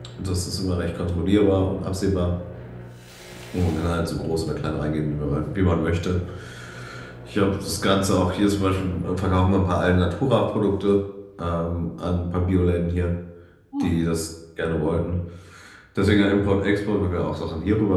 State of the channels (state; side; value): identical; both; correlation 1.00